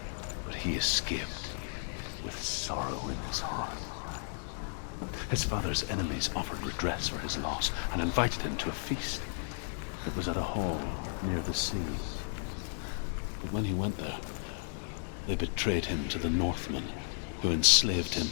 But he escaped with sorrow in his heart. His father's enemies offered redress for his loss and invited him to a feast. It was at a hall near the sea. But when he went there, they betrayed him to the Northmen, who enslaved him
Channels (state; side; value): silent; right; 55 dB below the other